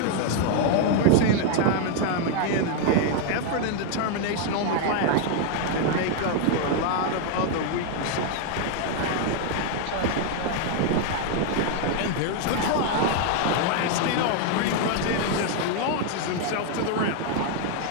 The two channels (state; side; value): different; both; correlation 0.00